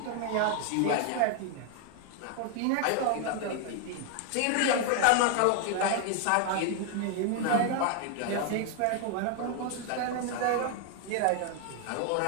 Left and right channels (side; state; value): both; different; correlation 0.00